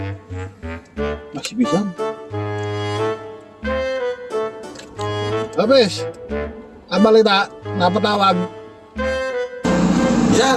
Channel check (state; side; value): identical; both; correlation 1.00